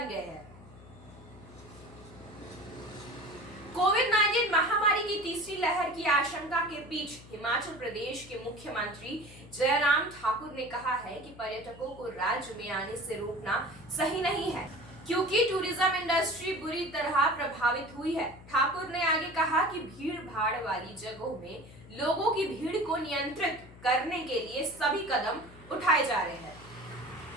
गए हैं। कोविड-19 महामारी की तीसरी लहर की आशंका के बीच हिमाचल प्रदेश के मुख्यमंत्री जयराम ठाकुर ने कहा है कि पर्यटकों को राज्य में आने से रोकना सही नहीं है, क्योंकि टूरिज्म इंडस्ट्री बुरी तरह प्रभावित हुई है। ठाकुर ने आगे कहा कि भीड़ भाड़ वाली जगहों में लोगों की भीड़ को नियंत्रित करने के लिए सभी कदम उठाए जा रहे हैं।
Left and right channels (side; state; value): left; noise; hum, 19 dB below the sound